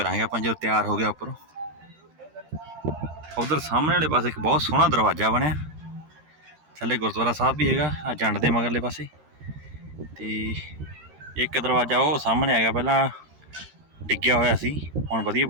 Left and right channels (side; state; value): left; late; 13 ms